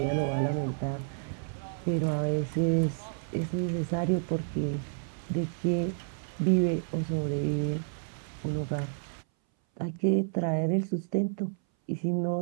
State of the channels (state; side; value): silent; left; 58 dB below the other